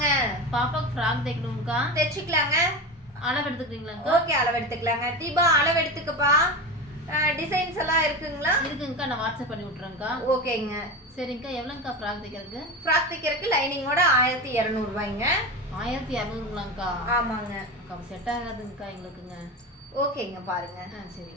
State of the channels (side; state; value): both; normal; correlation 0.23